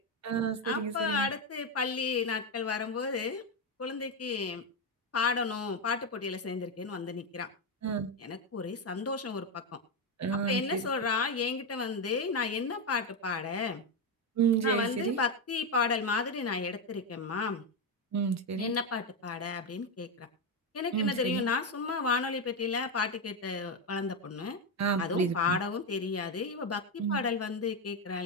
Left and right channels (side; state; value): both; normal; correlation 0.08